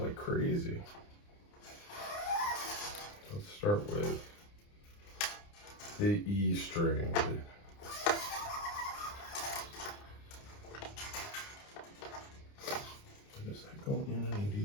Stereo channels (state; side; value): late; right; 29 ms